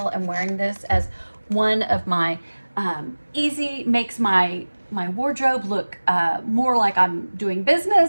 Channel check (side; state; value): both; inverted; correlation -1.00